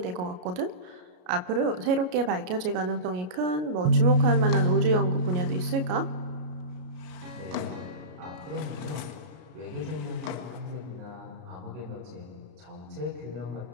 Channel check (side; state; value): left; late; 33 ms